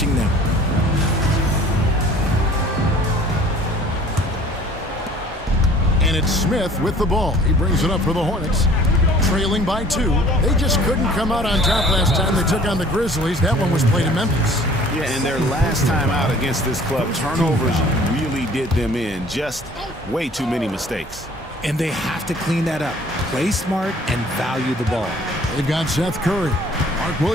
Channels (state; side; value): normal; both; correlation 0.52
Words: them. And it's Smith with the ball. He brings it up for the Hornets. Trailing by 2. They just couldn't come out on top last time they took on the Grizzlies. That one was played in Memphis. Yeah, and their last time out against this club, turnovers really did them in. Just way too many mistakes. And they have to clean that up. Play smart and value the ball. They've got Seth Curry. Mark